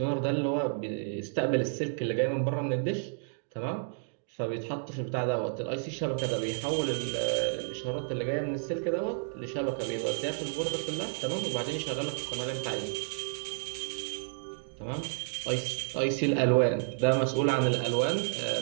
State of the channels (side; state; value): left; silent; digital silence